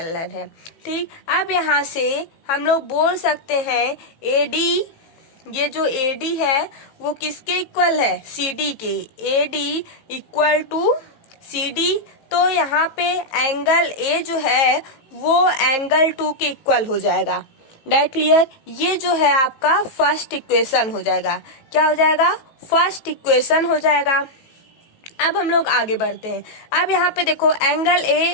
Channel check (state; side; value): late; right; 18 ms